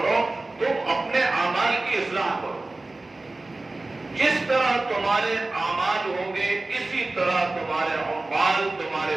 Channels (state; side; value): quieter; left; 3.1 dB